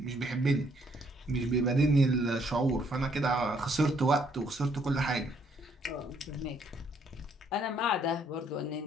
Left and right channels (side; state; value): both; normal; correlation 0.68